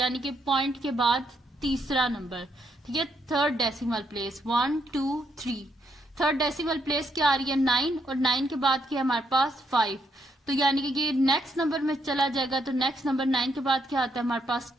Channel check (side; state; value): both; normal; correlation 0.76